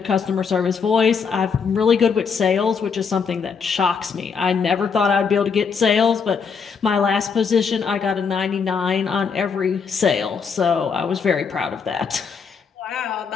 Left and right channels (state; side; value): quieter; right; 5.9 dB